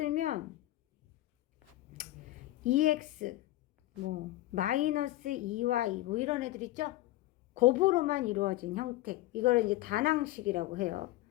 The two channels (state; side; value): quieter; right; 16.4 dB